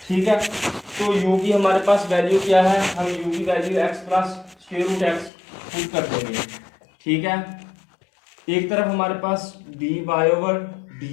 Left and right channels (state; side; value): drops out; right; at 5.3 s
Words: ठीक है। तो u की हमारे पास वैल्यू क्या है, हम u की value x + square root x put कर देंगे, ठीक है। एक तरफ हमारे पास